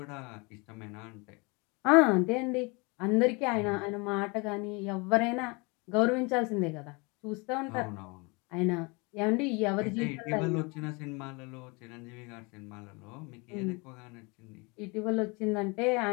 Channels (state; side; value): quieter; right; 28.5 dB